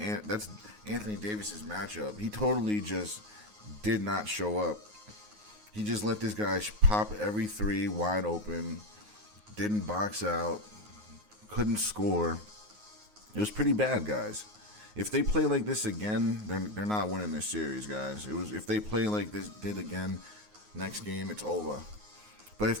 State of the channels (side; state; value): left; late; 9.5 ms